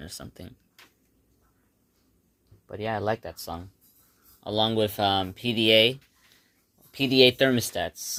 or something. But yeah, I like that song. Along with PDA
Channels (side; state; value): both; identical; correlation 1.00